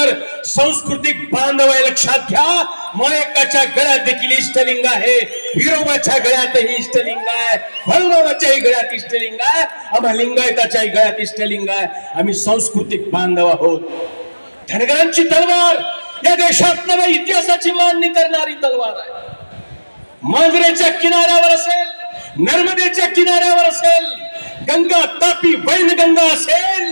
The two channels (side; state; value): both; inverted; correlation -1.00